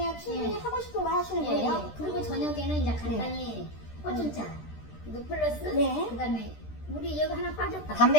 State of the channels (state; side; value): late; right; 13 ms